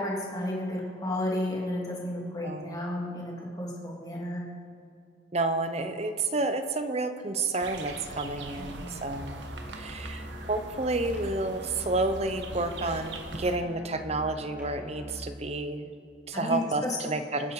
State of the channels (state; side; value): normal; both; correlation 0.30